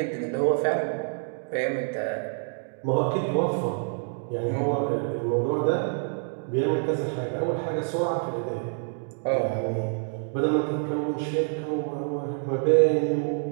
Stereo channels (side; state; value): left; silent; 58 dB below the other